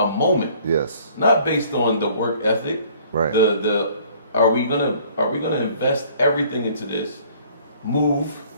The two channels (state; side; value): inverted; both; correlation -0.56